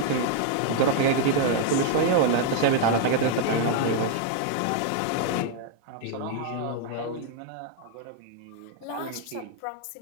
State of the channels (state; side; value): different; both; correlation 0.00